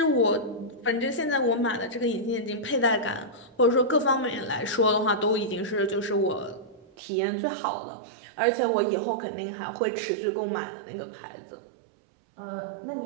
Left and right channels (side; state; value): left; drops out; at 6.9 s